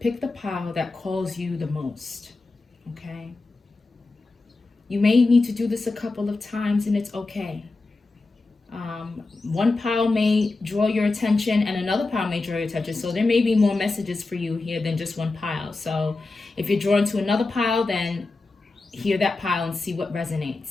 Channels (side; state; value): right; quieter; 3.5 dB